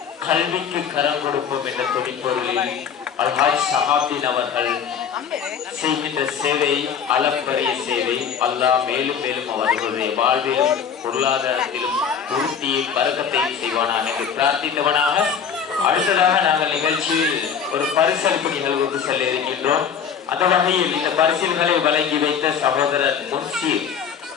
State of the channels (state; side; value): quieter; right; 7.4 dB